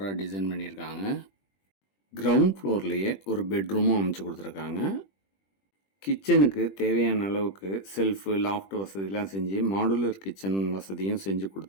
டிசைன் பண்ணியிருக்காங்க. கிரவுண்ட் ஃப்ளோர்லேயே ஒரு பெட்ரூமும் அமைச்சு கொடுத்துருக்காங்க. கிச்சனுக்கு தேவையான அளவுக்கு செல்ஃபு, லாஃப்ட் வசதிலாம் செஞ்சு மாடுலர் கிச்சன் வசதியும் செஞ்சு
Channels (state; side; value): late; right; 21 ms